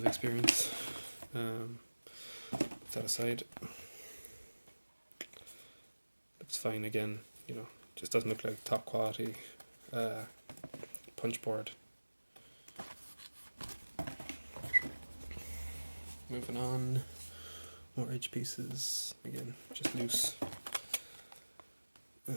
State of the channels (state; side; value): inverted; both; correlation -1.00